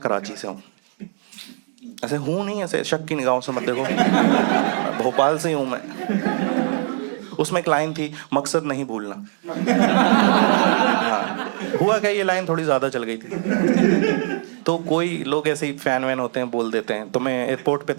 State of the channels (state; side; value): silent; left; digital silence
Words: से हूँ। ऐसे हूँ नहीं, ऐसे शक की निगाहों से मत देखो, भोपाल से ही हूँ मैं। उसमें एक लाइन थी, मकसद नहीं भूलना। हाँ, हुआ क्या, ये लाइन थोड़ी ज़्यादा चल गई थी, तो कोई लोग ऐसे ही फैन वैन होते हैं, बोल देते हैं। तो मैं एयरपोर्ट पे